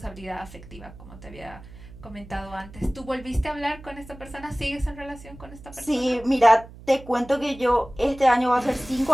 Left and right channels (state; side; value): noise; right; hum, 18 dB below the sound